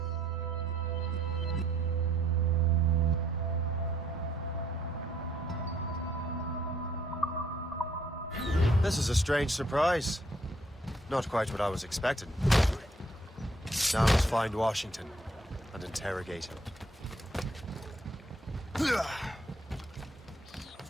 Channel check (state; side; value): normal; both; correlation 0.67